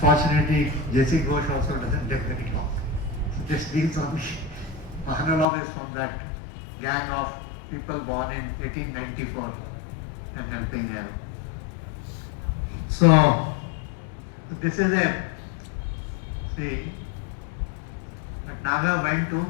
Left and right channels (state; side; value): drops out; right; at 5.5 s